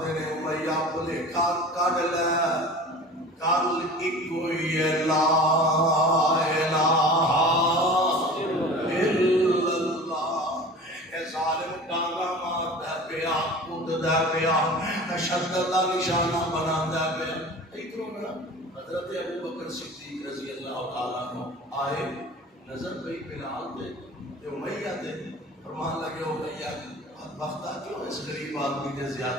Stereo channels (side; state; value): both; normal; correlation 0.39